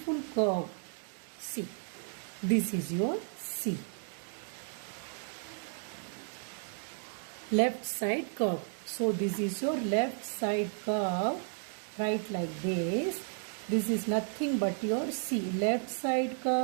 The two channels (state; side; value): silent; left; 55 dB below the other